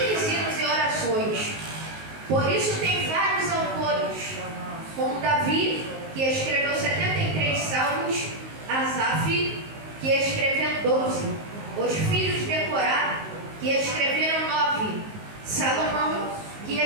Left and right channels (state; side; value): late; left; 19 ms